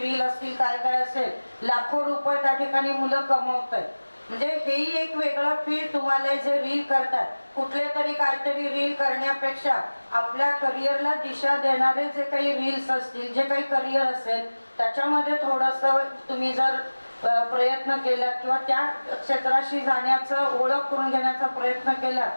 असतील काय काय असेल, लाखो रुपये त्या ठिकाणी मुलं कमवत आहेत. म्हणजे हेही एक वेगळं फील्ड तुम्हाला जे रील करतात, कुठले तरी काहीतरी रील करण्यापेक्षा आपल्या करिअरला दिशा देणारे जे काही रील्स असतील, जे काही करिअर असेल त्याच्यामध्ये थोडंसं तुम्ही जर प्रयत्न केला किंवा त्या क्षेत्राशी जाण्याचं ओळख करून घेण्याचा प्रयत्न केला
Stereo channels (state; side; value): inverted; both; correlation -1.00